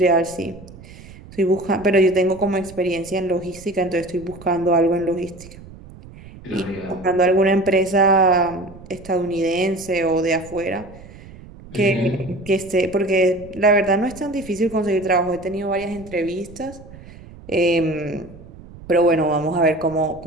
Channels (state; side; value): noise; right; rumble, 19 dB below the sound